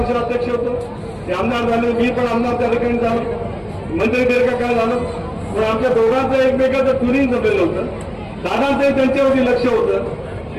अध्यक्ष होतो, ते आमदार झाले, मी पण आमदार त्या ठिकाणी झालो, मंत्री दीर्घकाळ झालो, पण आमच्या दोघांचं एकमेकाचं ट्युनिंग जमलेलं होतं. दादांचंही त्यांच्यावरती लक्ष होतं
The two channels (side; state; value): both; identical; correlation 1.00